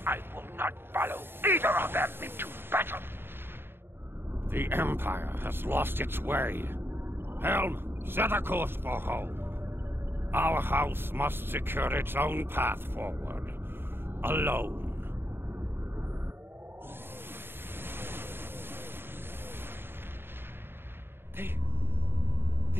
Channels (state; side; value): late; left; 0.11 ms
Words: I will not follow either of them into battle. The Empire has lost its way. Helm, set a course for home. Our house must secure its own path forward. Alone.